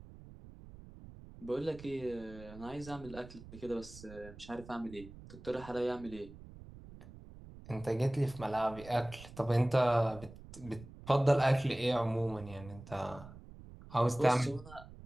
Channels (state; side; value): noise; right; rumble, 17 dB below the sound